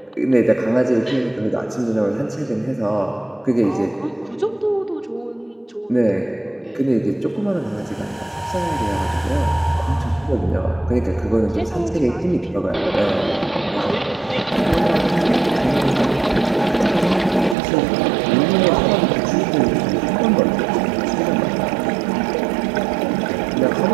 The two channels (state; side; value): drops out; left; at 17.6 s